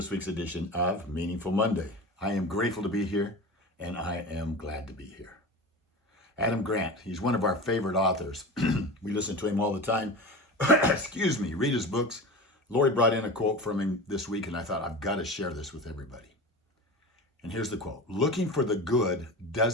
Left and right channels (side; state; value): both; normal; correlation 0.30